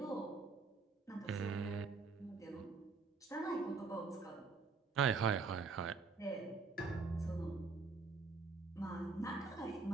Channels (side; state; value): left; quieter; 4.3 dB